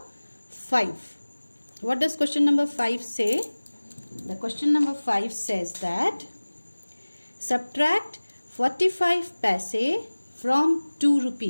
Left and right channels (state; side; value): inverted; both; correlation -1.00